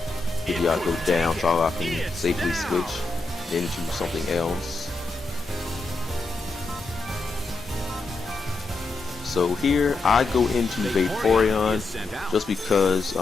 Pidgeot go down so I can safely switch into something else. So here I go into Vaporeon just because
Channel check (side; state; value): right; quieter; 3.4 dB